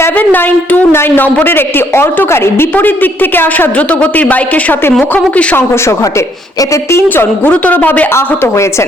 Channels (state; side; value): normal; both; correlation 0.68